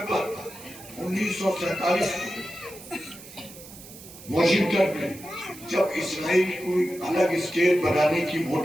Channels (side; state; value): right; noise; hiss, 17 dB below the sound